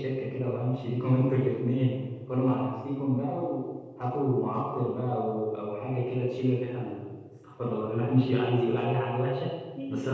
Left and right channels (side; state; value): both; identical; correlation 1.00